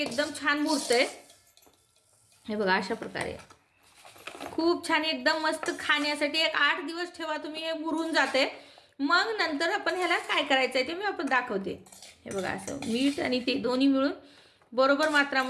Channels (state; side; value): identical; both; correlation 1.00